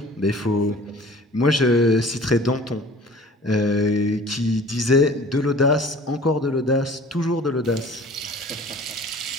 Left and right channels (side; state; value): both; normal; correlation 0.47